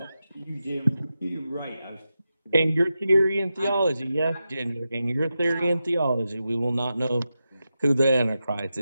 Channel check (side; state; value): both; inverted; correlation -0.90